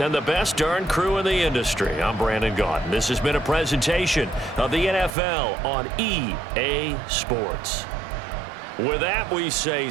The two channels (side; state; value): left; drops out; at 5.2 s